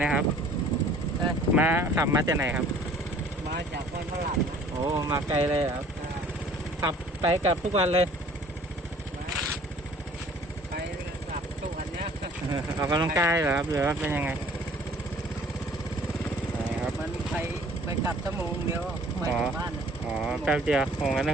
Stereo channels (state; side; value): normal; both; correlation 0.53